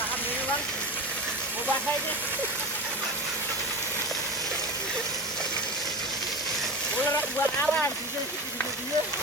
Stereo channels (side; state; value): both; normal; correlation 0.27